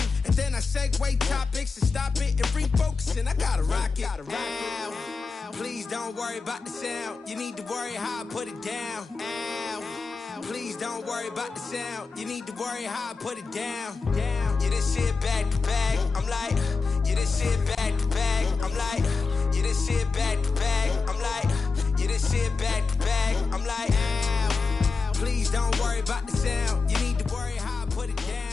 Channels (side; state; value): right; quieter; 4.4 dB